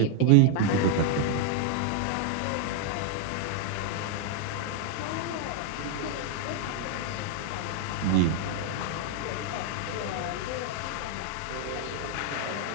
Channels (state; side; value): different; both; correlation 0.00